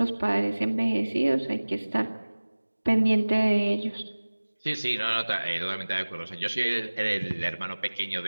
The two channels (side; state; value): both; inverted; correlation -1.00